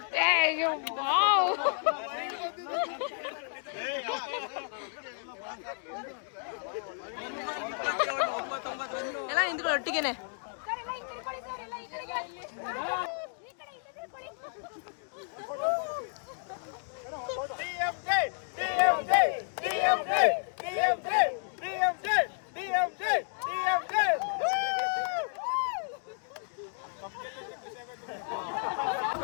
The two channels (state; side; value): silent; right; 57 dB below the other